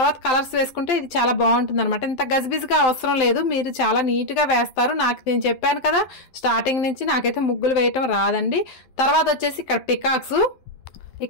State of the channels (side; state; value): right; late; 12 ms